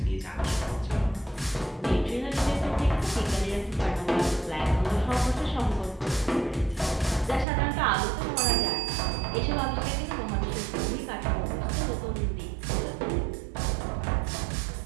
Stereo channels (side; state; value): left; drops out; at 7.5 s